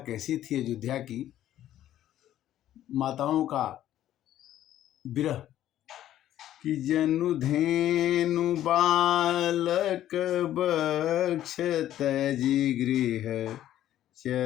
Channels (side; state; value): right; quieter; 12.4 dB